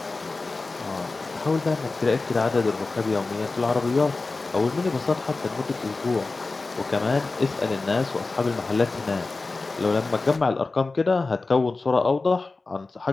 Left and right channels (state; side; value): quieter; right; 3.6 dB